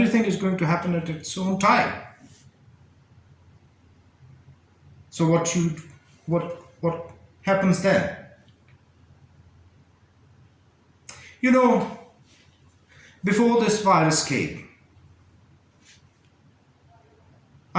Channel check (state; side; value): identical; both; correlation 1.00